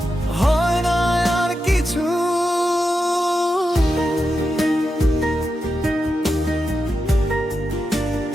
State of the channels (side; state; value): both; normal; correlation 0.88